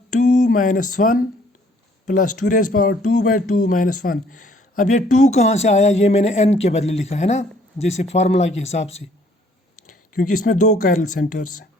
2 minus 1 plus 2 raise power 2 by 2 minus 1। अब ये 2 कहाँ से आया, ये मैंने n के बदले लिखा है ना, जैसे फार्मूला के हिसाब से, क्योंकि इसमें 2 कायरल सेंटर्स हैं।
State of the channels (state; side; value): normal; both; correlation 0.61